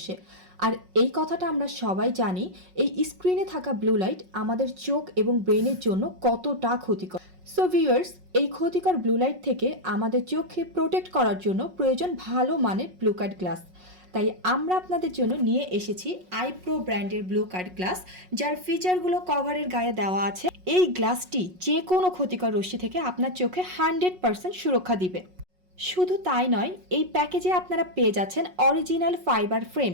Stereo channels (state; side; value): late; left; 5.5 ms